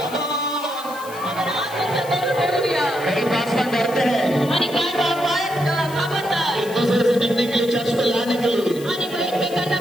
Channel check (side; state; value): left; noise; hiss, 17 dB below the sound